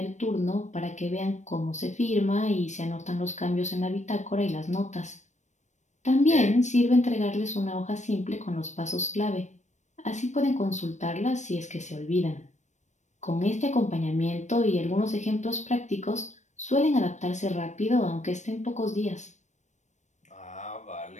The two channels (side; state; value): right; late; 0.34 ms